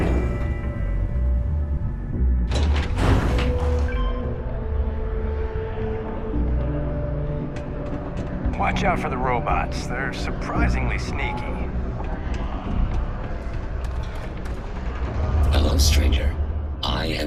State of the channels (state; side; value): identical; both; correlation 1.00